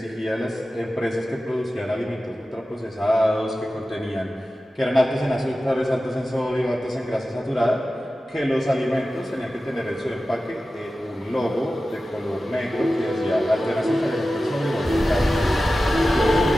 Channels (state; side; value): normal; both; correlation 0.94